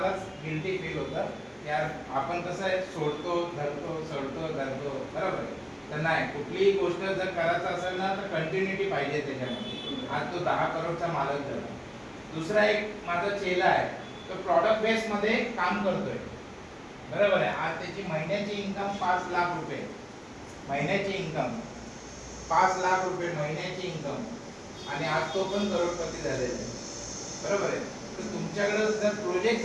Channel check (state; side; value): identical; both; correlation 1.00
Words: गिल्टी फील होतं. यार आपण कसं आहे, सोडतो धरतो सोडतो धरतो. बरोबर आहे. तर नाही, कुठलीही गोष्ट जर करायचं असेल ना तर कंटिन्युटी पाहिजे त्याच्यामध्ये. आज तो 10 करोडचा मालक झाला. दुसरा एक माझा चेला आहे, तो प्रॉडक्ट बेस मध्ये काम करतोय. बरोबर आहे. आज त्याची महिन्याची इन्कम 5 लाख रुपये. महिन्याची इन्कम 5 लाख रुपये महिन्याची इन्कम. आणि आज तो पण करोडपती झालेला आहे. बरोबर आहे. तर तुमच्याकडे जर प्रोजेक्ट